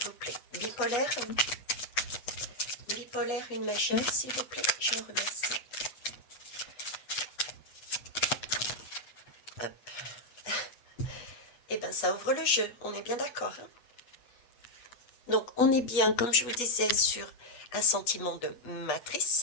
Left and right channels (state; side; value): late; right; 8.0 ms